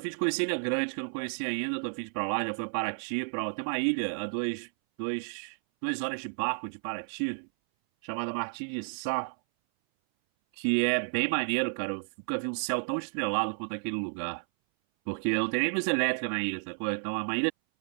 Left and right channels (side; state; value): left; silent; 57 dB below the other